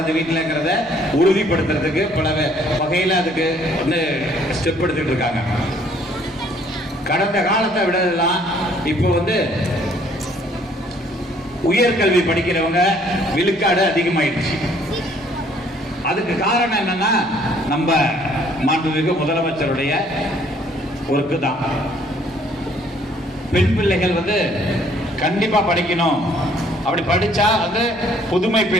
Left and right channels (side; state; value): both; normal; correlation 0.61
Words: வீட்டிலங்கிறத உறுதிப்படுத்துறதுக்கு பல வகையில அதுக்கு வந்து ஸ்டெப் எடுத்துட்டு இருக்காங்க. கடந்த காலத்தை விடலாம் இப்போ வந்து உயர்கல்வி படிக்கிறவங்க விழுக்காடு அதிகமாயிடுச்சு. அதுக்கு காரணம் என்னன்னா, நம்ம மாண்புமிகு முதலமைச்சருடைய ஒர்க்கு தான். பெண் பிள்ளைகள் வந்து கண்டிப்பா படிக்கணும். அப்படி படிச்சா வந்து புதுமை